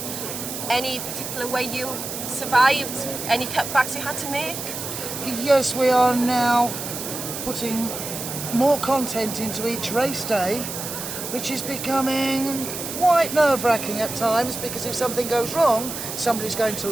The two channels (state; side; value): noise; right; hiss, 7 dB below the sound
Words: Any particular way you survived? Any cutbacks you had to make? Yes, we are now putting more content into each race day, which is becoming quite nerve-wracking at times, because if something goes wrong, somebody's going to